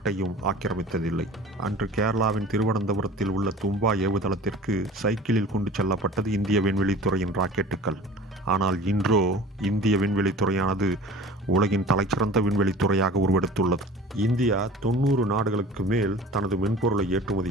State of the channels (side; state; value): both; normal; correlation 0.42